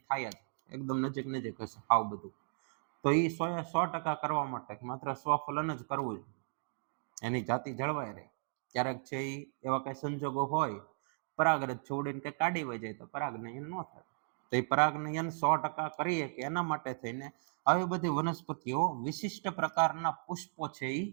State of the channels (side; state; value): left; silent; digital silence